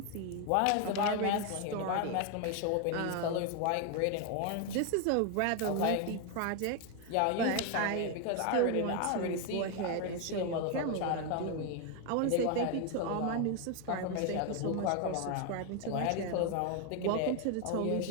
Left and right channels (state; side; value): different; both; correlation 0.01